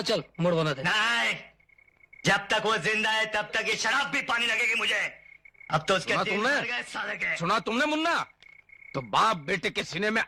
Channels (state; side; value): identical; both; correlation 1.00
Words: चल, मुड़ बना दे। नहीं, जब तक वो जिंदा है तब तक ये शराब भी पानी लगेगी मुझे। अब तो उसके सुना दिन तुमने? भर गए साले के। सुना तुमने मुन्ना? तो बाप बेटे के सीने में